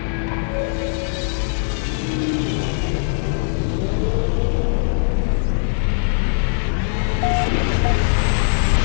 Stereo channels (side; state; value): right; silent; digital silence